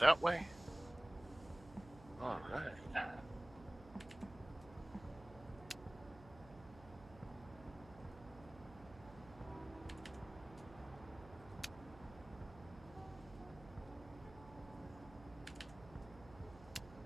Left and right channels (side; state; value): right; noise; hum, 17 dB below the sound